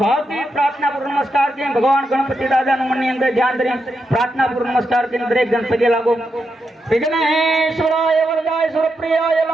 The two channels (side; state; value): both; normal; correlation 0.84